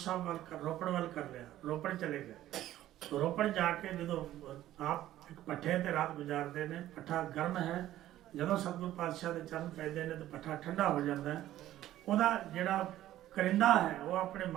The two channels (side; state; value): left; quieter; 13.7 dB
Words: ਵੱਲ ਰੋਪੜ ਵੱਲ ਕਰ ਲਿਆ। ਰੋਪੜ ਚਲੇ ਗਏ। ਰੋਪੜ ਜਾ ਕੇ ਜਦੋਂ ਆਪ ਇੱਕ ਪੱਠੇ ਤੇ ਰਾਤ ਗੁਜ਼ਾਰਦੇ ਨੇ, ਪੱਠਾ ਗਰਮ ਹੈ, ਜਦੋਂ ਸਤਿਗੁਰੂ ਪਾਤਸ਼ਾਹ ਦੇ ਚਰਨ ਪੈਂਦੇ ਨੇ ਤਾਂ ਪੱਠਾ ਠੰਡਾ ਹੋ ਜਾਂਦਾ ਹੈ। ਉਹਦਾ ਜਿਹੜਾ ਕਰਿੰਦਾ ਹੈ ਉਹ ਆਪਣੇ